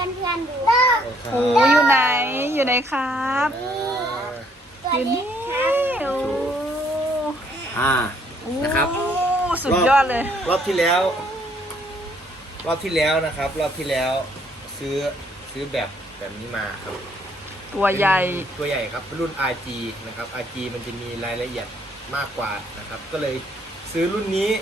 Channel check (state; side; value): normal; both; correlation 0.66